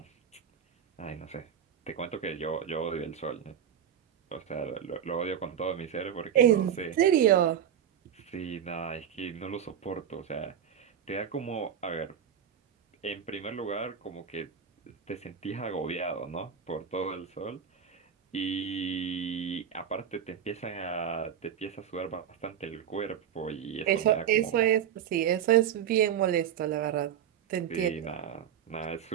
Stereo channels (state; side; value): quieter; left; 8.9 dB